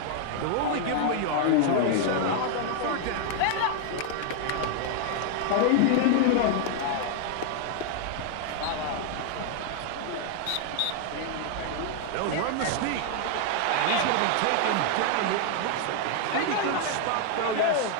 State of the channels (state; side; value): different; both; correlation 0.00